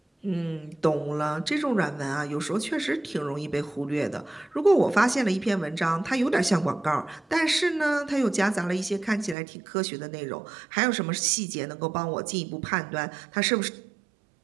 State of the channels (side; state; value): left; drops out; at 9.3 s